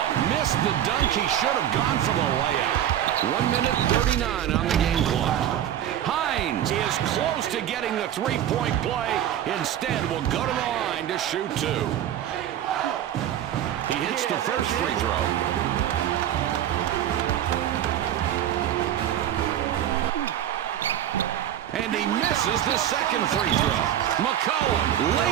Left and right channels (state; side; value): quieter; left; 11.0 dB